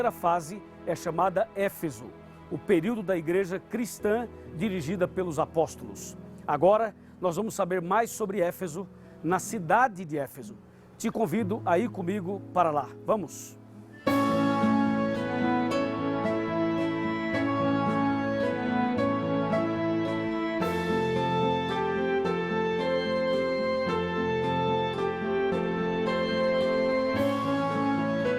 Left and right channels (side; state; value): both; identical; correlation 1.00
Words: fase é chamada Éfeso, o período da igreja cristã dirigida pelos apóstolos. Agora nós vamos saber mais sobre Éfeso, na cidade de Éfeso. Te convido a ir comigo para lá. Vamos!